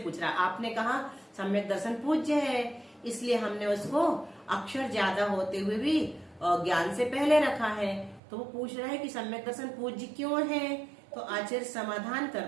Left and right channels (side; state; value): left; drops out; at 8.2 s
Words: रहा। आपने कहा सम्यक दर्शन पूज्य है, इसलिए हमने उसको अक्षर ज्यादा होते हुए भी ज्ञान से पहले रखा है। तो वो पूछ रहा है कि सम्यक दर्शन पूज्य क्यों है? तो आचार्य समाधान